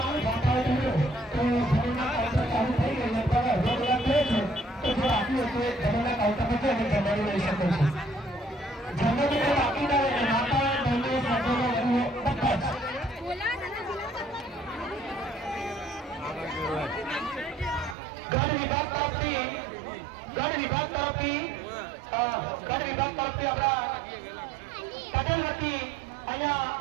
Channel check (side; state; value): left; drops out; at 17.9 s